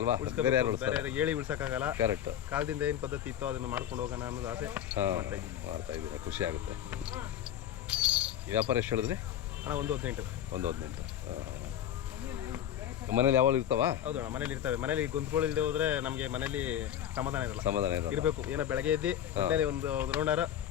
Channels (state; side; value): quieter; right; 10.6 dB